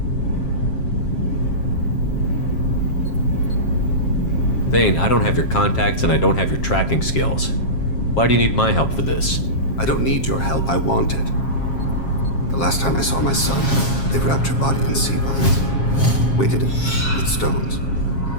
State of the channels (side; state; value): right; late; 7.4 ms